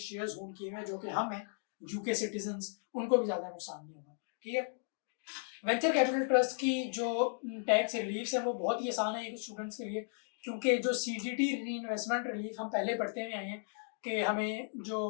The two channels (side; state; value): right; silent; digital silence